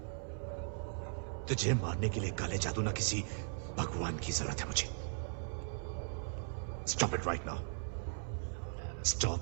तुझे मारने के लिए काले जादू ना किसी भगवान की जरूरत है मुझे। Stop it right now.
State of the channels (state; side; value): silent; left; 52 dB below the other